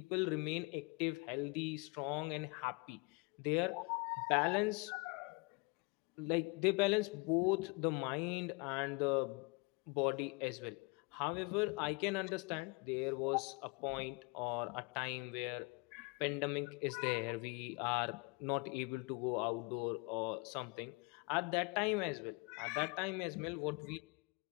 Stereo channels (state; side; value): quieter; right; 28.9 dB